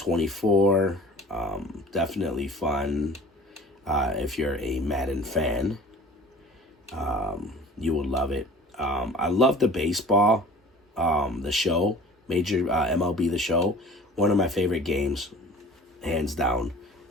definitely fun. If you're a Madden fan, you will love it. I love the baseball, the show, Major MLB The Show. One of my favorite games, hands down,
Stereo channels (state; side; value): normal; both; correlation 0.44